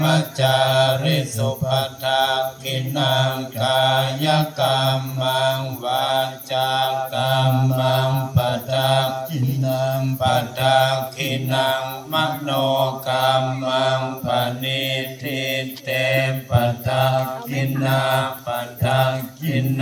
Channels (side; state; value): both; identical; correlation 1.00